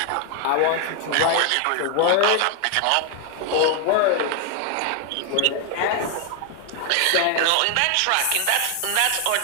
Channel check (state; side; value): different; both; correlation 0.00